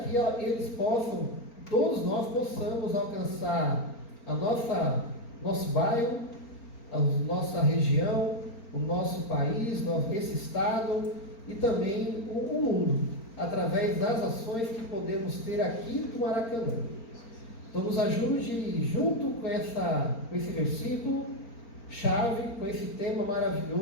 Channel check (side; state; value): right; late; 4.4 ms